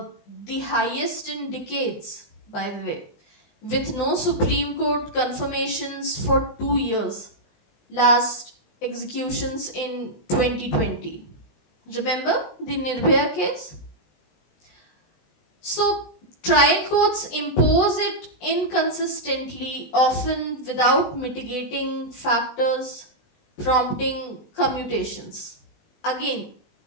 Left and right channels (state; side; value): late; right; 20 ms